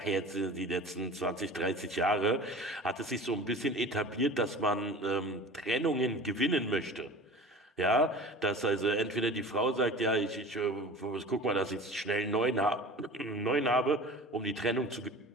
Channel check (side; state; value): both; normal; correlation 0.39